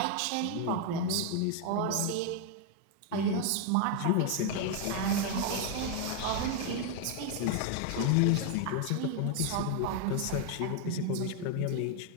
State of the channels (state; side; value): different; both; correlation 0.01